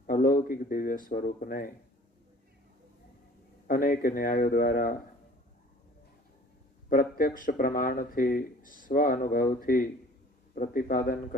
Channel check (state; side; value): normal; both; correlation 0.49